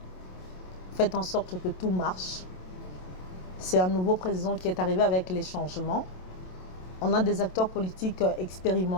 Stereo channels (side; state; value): right; late; 27 ms